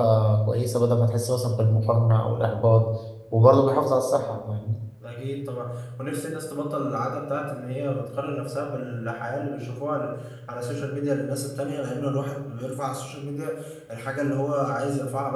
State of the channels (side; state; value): both; identical; correlation 1.00